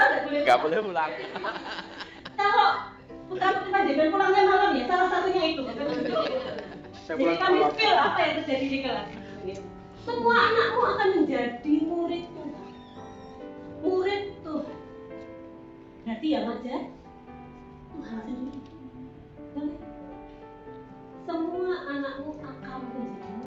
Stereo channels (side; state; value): both; identical; correlation 1.00